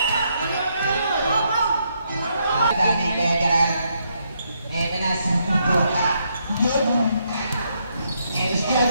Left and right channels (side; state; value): both; inverted; correlation -0.77